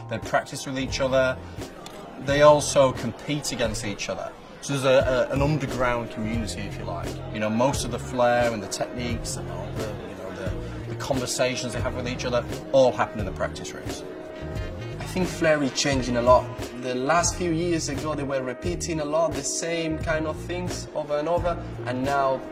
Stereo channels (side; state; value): both; identical; correlation 1.00